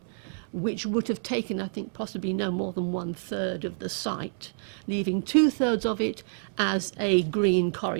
which would have taken, I think, possibly no more than 1/3 of the site, leaving 2/3 of it as a green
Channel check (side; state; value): left; silent; 59 dB below the other